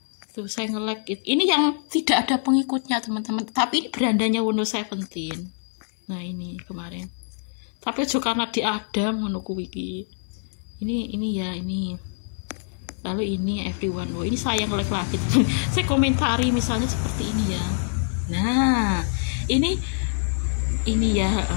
Tuh saya nge-like itu. Ini yang tidak ada pengikutnya teman-teman. Tapi ini berandanya Wono 17. Nah ini kemarin. Tapi juga karena dia ada menunggu wiki ini ya ini, lalu ini everyone ini saya nge-like lagi saya komentari misalnya seperti ini ya. Nah ini ya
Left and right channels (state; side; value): silent; right; 62 dB below the other